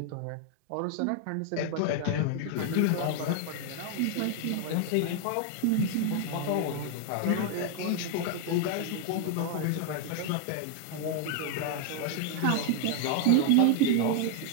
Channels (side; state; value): both; different; correlation 0.00